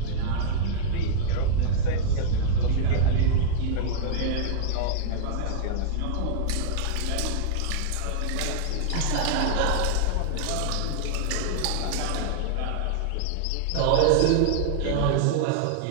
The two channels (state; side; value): different; both; correlation -0.01